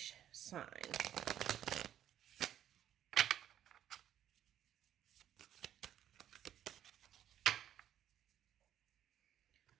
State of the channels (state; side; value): quieter; left; 10.9 dB